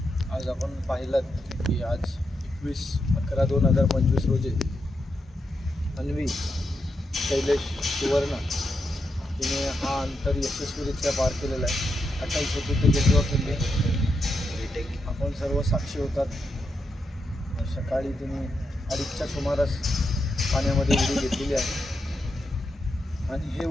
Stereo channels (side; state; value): both; normal; correlation 0.84